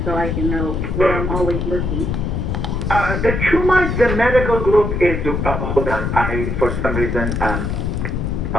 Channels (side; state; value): left; noise; rumble, 1 dB below the sound